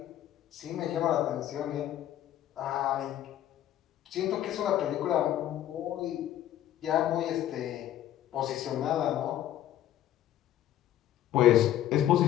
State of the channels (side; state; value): right; quieter; 12.2 dB